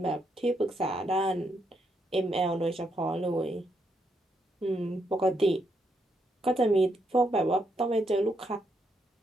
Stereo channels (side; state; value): both; normal; correlation 0.78